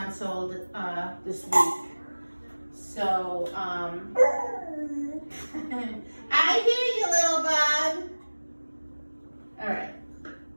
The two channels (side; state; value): both; inverted; correlation -1.00